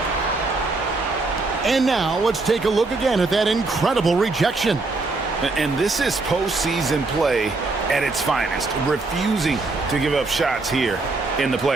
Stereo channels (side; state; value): left; quieter; 3.5 dB